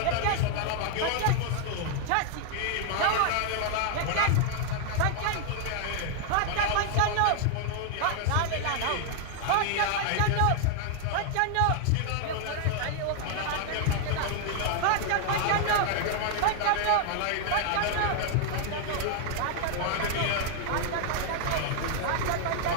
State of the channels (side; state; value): both; different; correlation 0.00